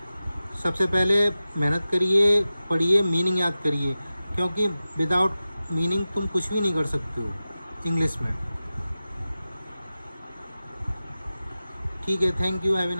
सबसे पहले मेहनत करिए, पढ़िए, मीनिंग याद करिए, क्योंकि विदाउट मीनिंग तुम कुछ भी नहीं कर सकते हो इंग्लिश में। ठीक है। Thank you, have a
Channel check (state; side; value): inverted; both; correlation -0.95